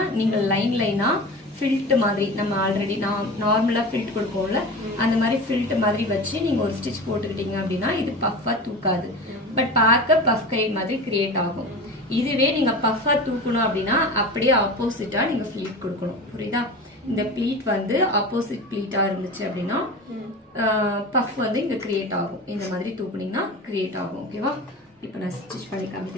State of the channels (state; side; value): normal; both; correlation 0.31